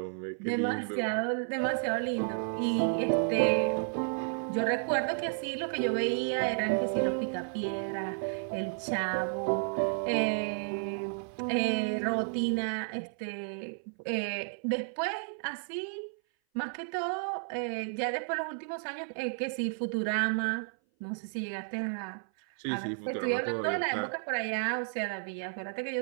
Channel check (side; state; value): left; silent; 56 dB below the other